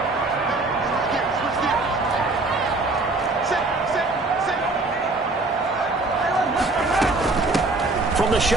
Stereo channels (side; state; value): left; quieter; 3.3 dB